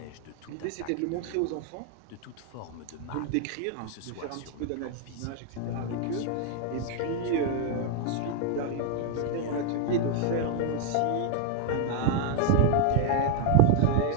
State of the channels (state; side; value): different; both; correlation 0.00